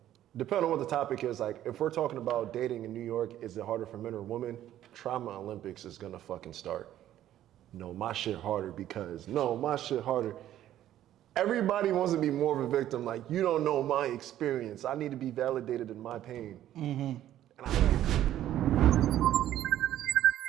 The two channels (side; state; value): left; quieter; 12.4 dB